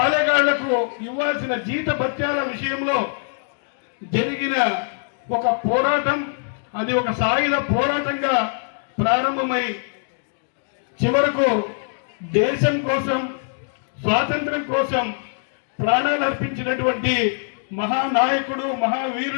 ఇవ్వాల్సిన జీత భత్యాల విషయంలో జరిగిన ఒక పోరాటం, అది ఒక సాయుధ పోరాటంగా ప్రారంభమై చివరకు దేశం కోసం, స్వాతంత్ర్యం కోసం ప్రాణాలు అర్పించినటువంటి మహానాయకుడు,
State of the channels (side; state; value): right; silent; 64 dB below the other